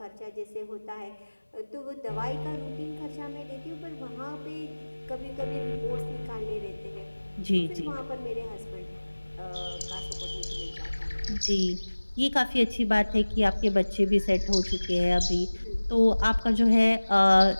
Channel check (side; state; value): both; inverted; correlation -1.00